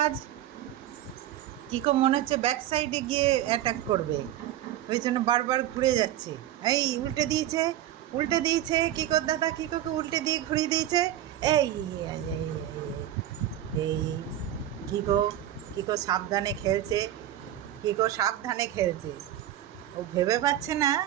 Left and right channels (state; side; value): quieter; left; 12.4 dB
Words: কিকো মনে হচ্ছে ব্যাক সাইডে গিয়ে অ্যাটাক করবে, ওই জন্য বারবার ঘুরে যাচ্ছে। এই উল্টে দিয়েছে কিকোর দাদা, কিকোকে উল্টে দিয়ে ঘুরিয়ে দিয়েছে। এই এই, এই, এই কিকো কিকো সাবধানে খেলছে, ও ভেবে পাচ্ছে না